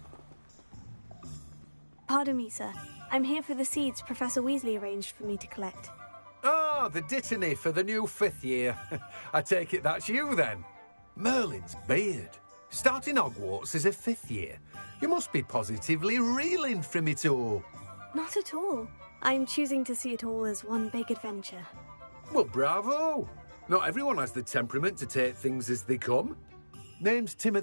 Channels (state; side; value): inverted; both; correlation -1.00